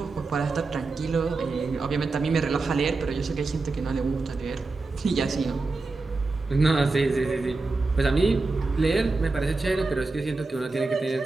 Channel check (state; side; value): quieter; left; 3.6 dB